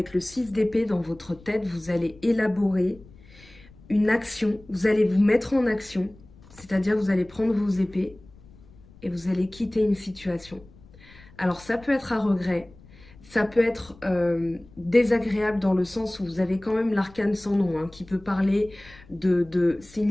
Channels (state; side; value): noise; left; rumble, 24 dB below the sound